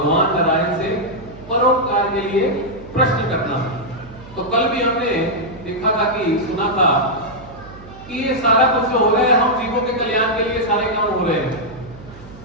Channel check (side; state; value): right; noise; hum, 19 dB below the sound